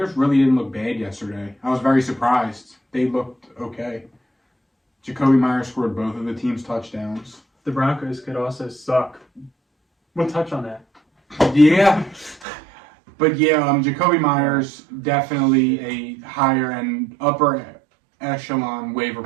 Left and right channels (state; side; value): drops out; left; at 12.5 s